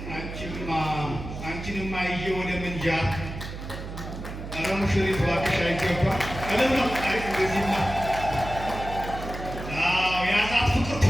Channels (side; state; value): right; noise; hum, 9 dB below the sound